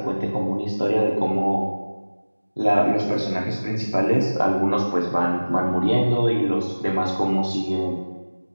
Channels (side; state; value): both; inverted; correlation -1.00